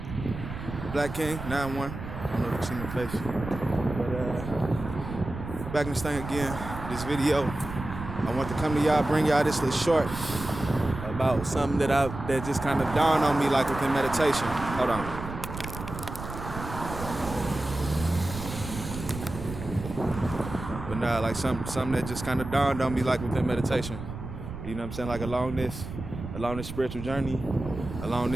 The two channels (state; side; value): noise; right; rumble, 9 dB below the sound